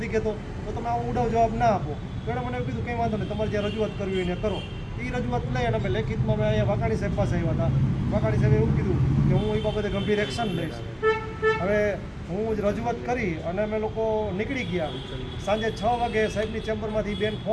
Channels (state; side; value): identical; both; correlation 1.00